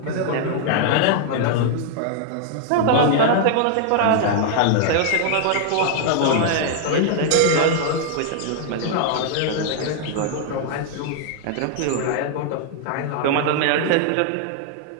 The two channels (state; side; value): different; both; correlation 0.00